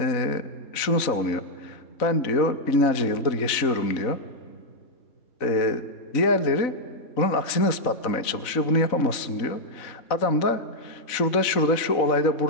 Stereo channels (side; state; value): right; late; 4.0 ms